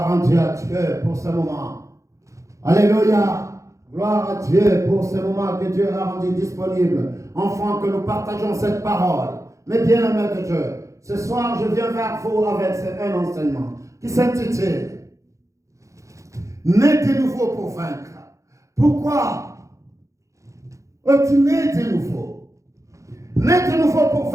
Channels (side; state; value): left; late; 0.15 ms